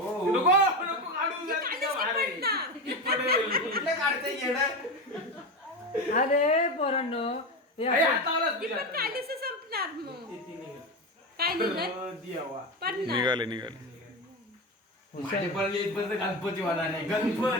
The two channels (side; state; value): both; normal; correlation 0.19